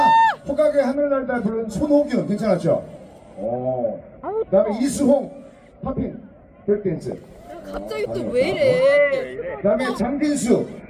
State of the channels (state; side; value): identical; both; correlation 1.00